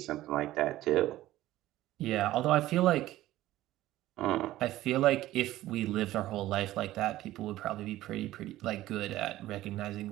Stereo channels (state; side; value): quieter; left; 15.4 dB